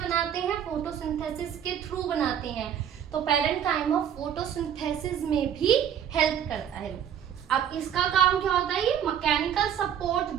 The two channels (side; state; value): left; quieter; 9.1 dB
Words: हैं? फोटोसिंथेसिस के थ्रू बनाते हैं। तो पेरेन्काइमा फोटोसिंथेसिस में भी हेल्प करता है। अब इसका काम क्या होता है? ये मैकेनिकल सपोर्ट